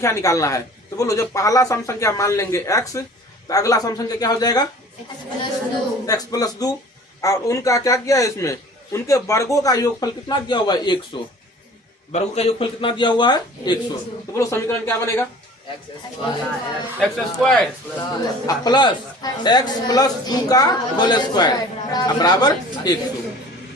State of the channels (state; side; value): normal; both; correlation 0.46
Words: निकालना है। तो बोलो, जब पहला सम संख्या मान लेंगे x, तो अगला सम संख्या क्या हो जाएगा? x plus 2। और उनका क्या किया है? इसमें उनके वर्गों का योगफल कितना दिया हुआ है? 100। वर्गों का योगफल कितना दिया हुआ है? 100। तो बोलो समीकरण क्या बनेगा? X square plus x plus 2 का होल स्क्वायर बराबर 100